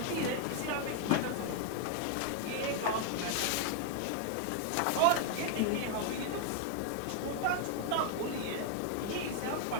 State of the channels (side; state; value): both; different; correlation 0.00